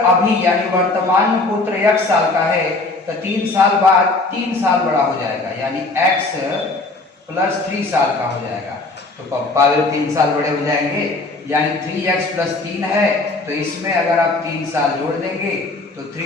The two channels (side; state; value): right; quieter; 3.2 dB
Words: अभी यानी वर्तमान में पुत्र 1 साल का है तो 3 साल बाद 3 साल बड़ा हो जाएगा, यानी x + 3 साल का हो जाएगा। तो पप्पा भी 3 साल बड़े हो जाएंगे, यानी 3x + 3 है। तो इसमें अगर आप 3 साल जोड़ देंगे तो